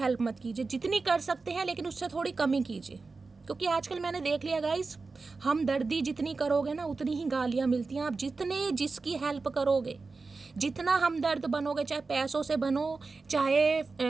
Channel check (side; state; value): left; quieter; 4.1 dB